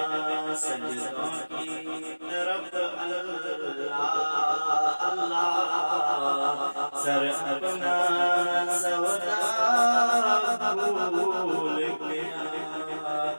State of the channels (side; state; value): both; inverted; correlation -1.00